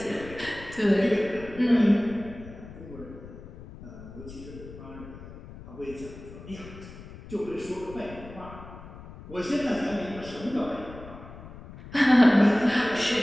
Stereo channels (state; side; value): noise; left; rumble, 15 dB below the sound